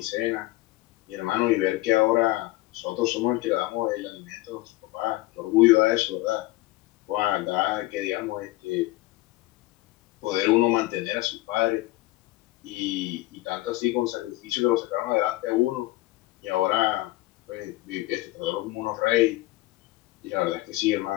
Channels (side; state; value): right; quieter; 19.2 dB